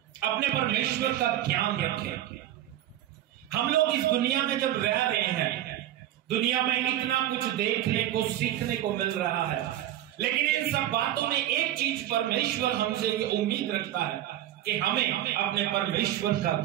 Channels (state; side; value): quieter; left; 12.7 dB